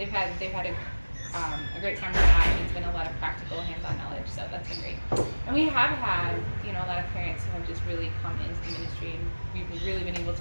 had a great time with that, and it's been a lot of practical hands-on knowledge, so that's been great. And we have had, a lot of parents who have just really come into the ministry, and we've really been able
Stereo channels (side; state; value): both; inverted; correlation -1.00